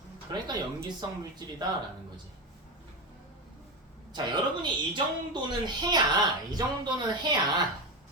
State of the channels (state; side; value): normal; both; correlation 0.16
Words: 그러니까 염기성 물질이다라는 거지. 자, 여러분이 이 정도는 해야 이 정도